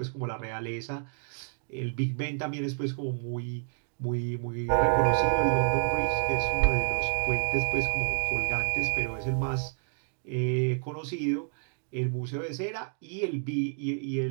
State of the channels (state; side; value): silent; left; digital silence